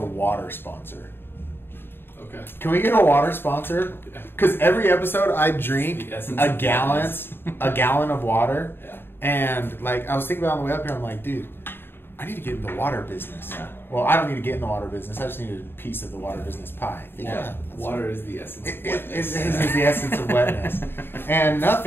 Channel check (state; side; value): late; right; 0.11 ms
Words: sponsor. Okay. Can we get a water sponsor? Because every episode I drink a gallon of water. Yeah. And like I was thinking about on the way up here, I'm like, dude, I need to get in the water business. Yeah. Well, I don't need to get in the water business. I just need a piece of the water business pie. Yeah. Water is the essence of wetness. It is the essence of wetness. And